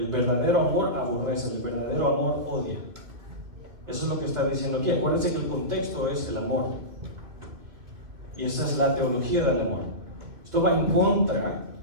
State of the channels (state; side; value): late; left; 2.7 ms